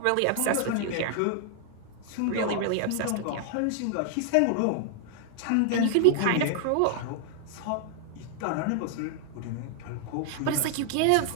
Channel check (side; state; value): both; different; correlation 0.00